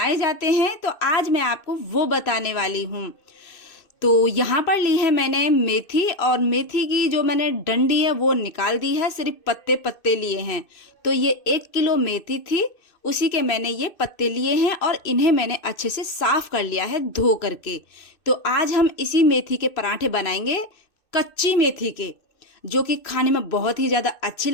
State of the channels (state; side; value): late; right; 2.6 ms